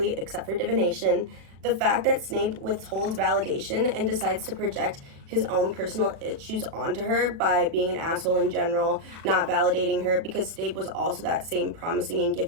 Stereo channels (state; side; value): late; left; 37 ms